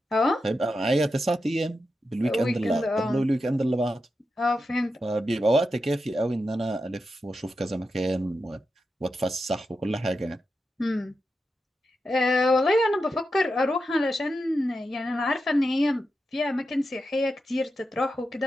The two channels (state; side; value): normal; both; correlation 0.88